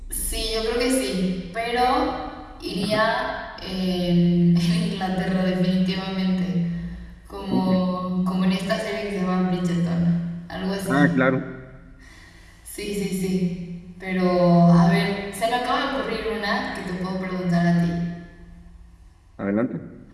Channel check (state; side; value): identical; both; correlation 1.00